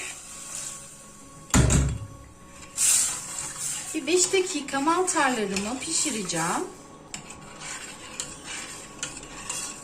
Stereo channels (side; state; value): both; identical; correlation 1.00